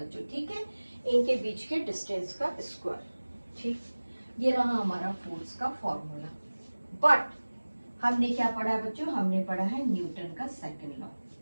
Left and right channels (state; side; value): inverted; both; correlation -1.00